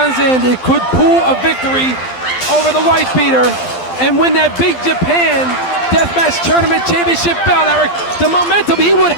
Zandig could pull a victory over the Whitebeater and win that Big Japan Deathmatch Tournament Championship belt, Eric, the momentum he would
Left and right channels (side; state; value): right; late; 12 ms